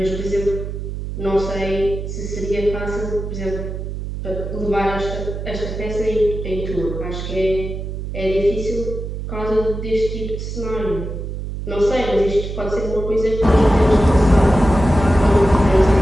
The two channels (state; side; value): noise; right; hum, 6 dB below the sound